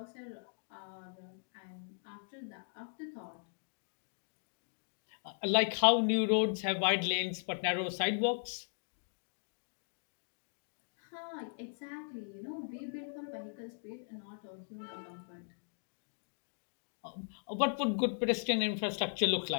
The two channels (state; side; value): silent; right; digital silence